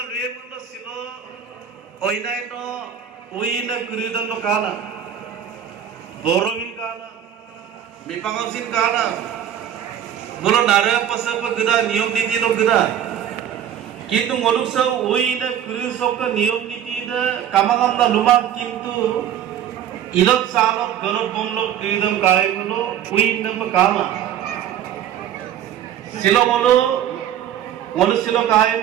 luye mundo silo. Oinai no uina kuridon no kana. Boromin kana. Mipangausin kana. Mulu nara pasa pa geda niyom niti no geda. Kintu ngoluk sa uina kurisok ka niyom niti da kamangam na lumang kintu ilot salok galop bomlok kuridam kaya mulo uina pa kama. Silo ngolu silo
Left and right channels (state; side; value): quieter; left; 10.0 dB